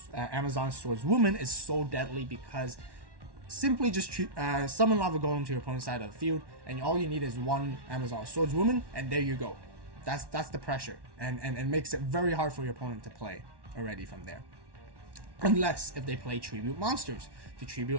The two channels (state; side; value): late; left; 1.1 ms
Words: is so deadly, because simply just summon Lava Golem to your opponent's side of the field, and all you need is 1 Amazon Swordswoman, and there you go. That's the pressure, and makes it very hard for your opponent to play already from there. Unless if they play tribute monsters to